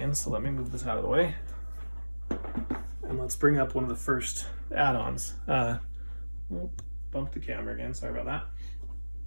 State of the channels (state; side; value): inverted; both; correlation -1.00